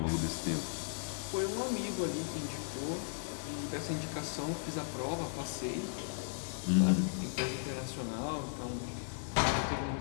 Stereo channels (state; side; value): silent; right; digital silence